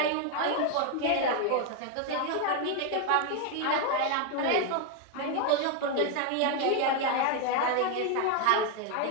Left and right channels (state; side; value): different; both; correlation 0.01